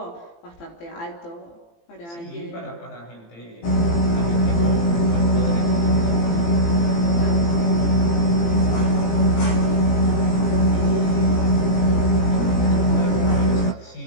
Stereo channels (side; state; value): right; late; 18 ms